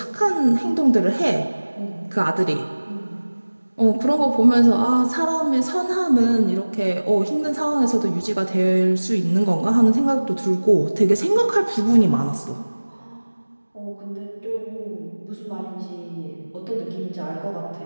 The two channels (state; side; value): inverted; both; correlation -1.00